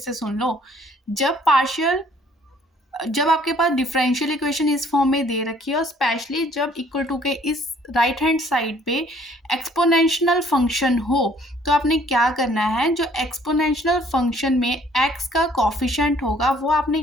सुन लो। जब आपके पास डिफरेंशियल इक्वेशन इस फॉर्म में दे रखी है और स्पेशली जब इक्वल टू के इस राइट हैंड साइड पे एक्सपोनेंशियल फंक्शन हो, तो आपने क्या करना है, जो एक्सपोनेंशियल फंक्शन में एक्स का कॉफिशेंट होगा वो आपने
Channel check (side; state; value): both; normal; correlation 0.60